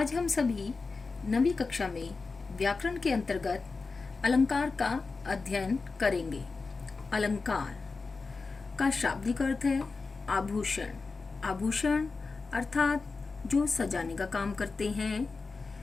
हम सभी नवीं कक्षा में व्याकरण के अंतर्गत अलंकार का अध्ययन करेंगे। अलंकार का शाब्दिक अर्थ है आभूषण। आभूषण अर्थात जो सजाने का काम करते हैं।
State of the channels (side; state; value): right; quieter; 4.2 dB